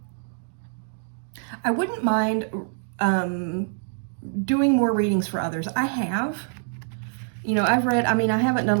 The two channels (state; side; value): silent; left; digital silence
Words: I wouldn't mind doing more readings for others. I have. You know, I've read, I mean, I haven't done